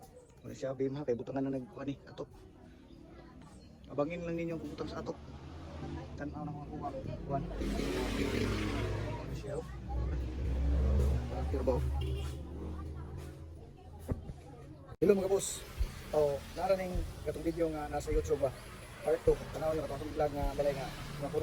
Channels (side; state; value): both; identical; correlation 1.00